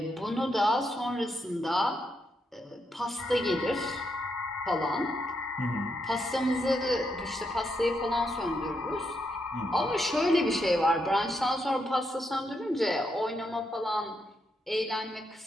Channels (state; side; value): normal; both; correlation 0.80